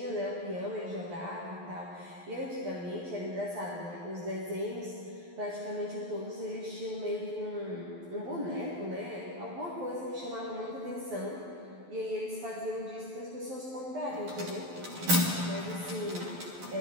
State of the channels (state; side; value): late; left; 12 ms